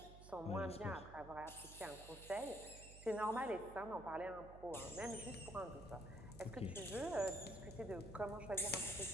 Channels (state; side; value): noise; right; hum, 14 dB below the sound